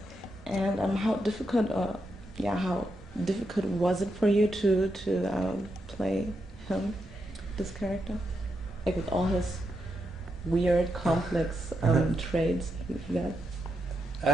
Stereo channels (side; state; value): both; normal; correlation 0.84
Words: And how difficult was it for you to play him, this character, like with all his weird, complex traits he got?